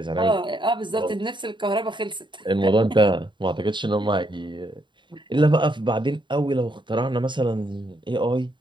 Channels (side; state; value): left; late; 0.23 ms